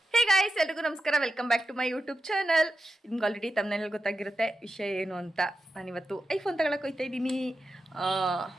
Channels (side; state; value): both; normal; correlation 0.90